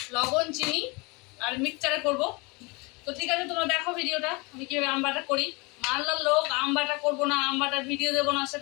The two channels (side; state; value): right; quieter; 27.5 dB